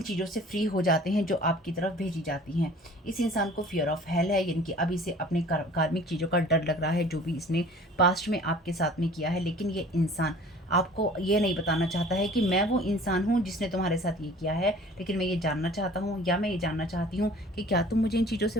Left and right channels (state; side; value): normal; both; correlation 0.48